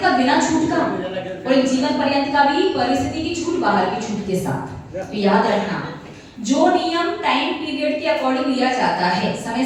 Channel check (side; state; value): both; identical; correlation 1.00